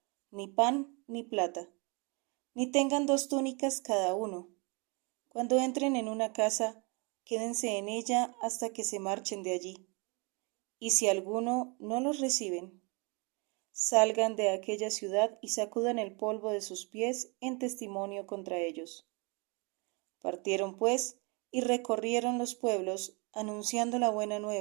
ni pan, ni plata, ni tengan 2 túnicas cada uno. Cuando entren en una casa, quédense en ella hasta que se marchen de allí. Y si alguno no los reciben, salgan de aquella ciudad y sacudan el polvo de sus pies en testimonio contra ellos. Partieron pues y recorrieron los pueblos, anunciando la buena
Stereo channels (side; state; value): left; quieter; 31.2 dB